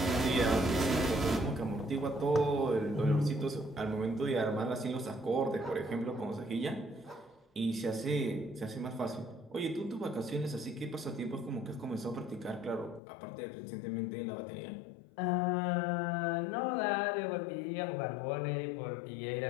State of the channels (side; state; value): right; drops out; at 13.0 s